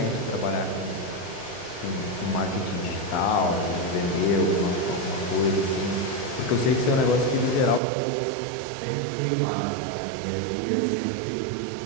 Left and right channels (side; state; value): left; drops out; at 7.8 s